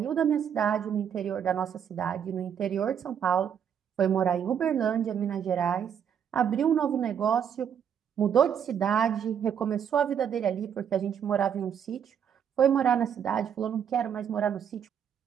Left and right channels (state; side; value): quieter; left; 8.3 dB